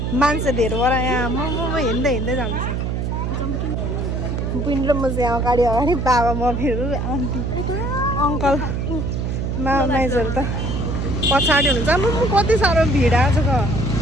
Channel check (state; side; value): noise; right; hum, 1 dB below the sound